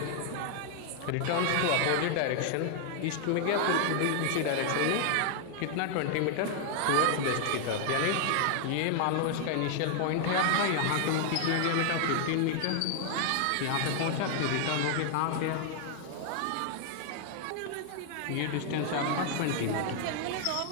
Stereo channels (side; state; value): both; different; correlation 0.00